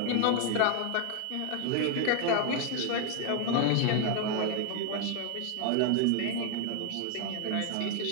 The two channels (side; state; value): both; different; correlation 0.01